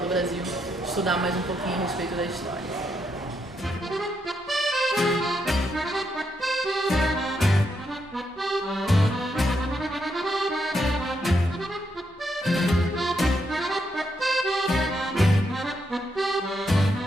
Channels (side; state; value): both; normal; correlation 0.80